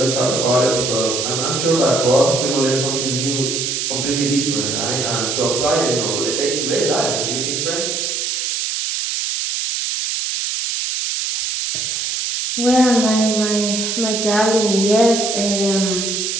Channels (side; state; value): right; noise; hiss, 1 dB below the sound